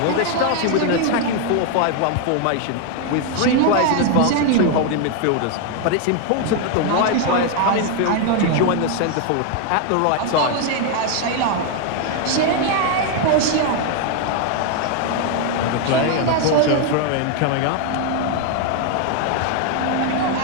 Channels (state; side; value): different; both; correlation 0.01